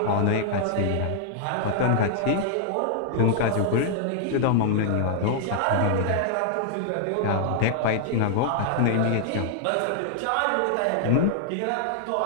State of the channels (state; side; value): different; both; correlation 0.00